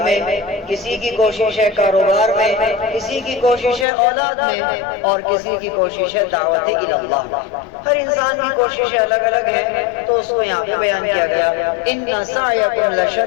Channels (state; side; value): drops out; right; at 3.9 s